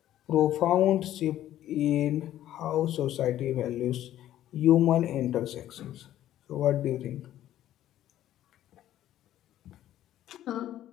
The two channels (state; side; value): quieter; right; 12.7 dB